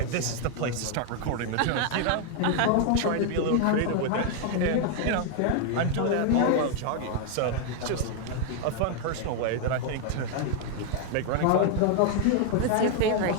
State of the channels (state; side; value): different; both; correlation 0.00